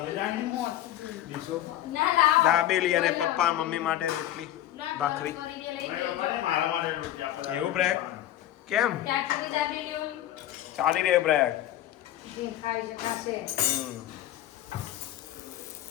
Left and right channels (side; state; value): right; quieter; 12.8 dB